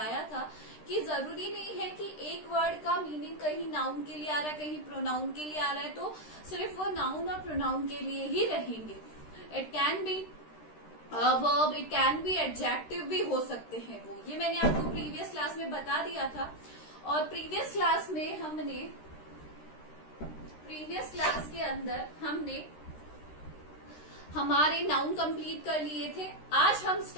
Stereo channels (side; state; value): right; late; 13 ms